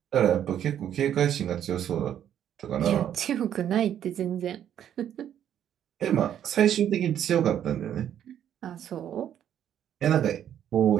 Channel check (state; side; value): quieter; left; 10.1 dB